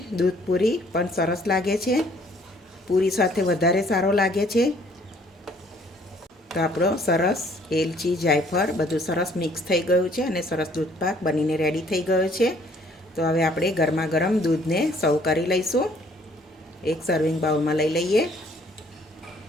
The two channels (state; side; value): normal; both; correlation 0.61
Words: દૂધપૂરી પણ સરસ લાગે છે, પૂરી સાથે વધારે સારો લાગે છે। તો આપણો સરસ એલચી જાયફળ બધું સરસ મિક્સ થઈ ગયું છે અને સરસ દૂધપાક બનીને રેડી થઈ ગયો છે. તો હવે આપણે ગરમા ગરમ દૂધને સર્વ કરી લઈશું. એક સર્વિંગ બાઉલમાં લઈ લઈએ.